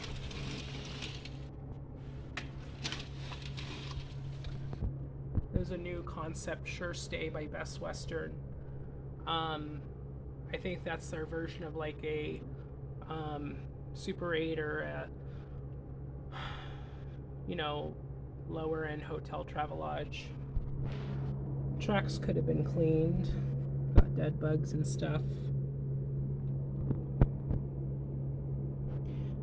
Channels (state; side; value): identical; both; correlation 1.00